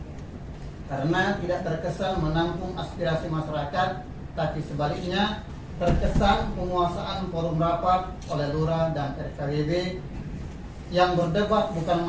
karena tidak terkesan menampung aspirasi masyarakat, tapi sebaliknya terkesan penguasaan forum rapat oleh lurah dan RKWB yang berdebat bukan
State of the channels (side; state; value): both; identical; correlation 1.00